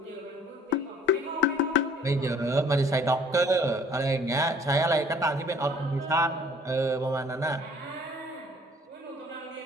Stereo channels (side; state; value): both; normal; correlation 0.56